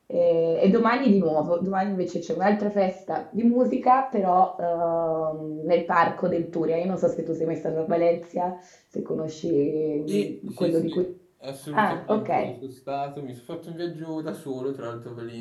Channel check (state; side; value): identical; both; correlation 1.00